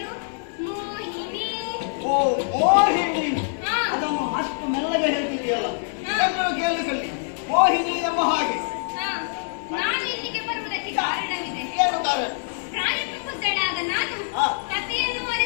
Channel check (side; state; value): right; silent; 62 dB below the other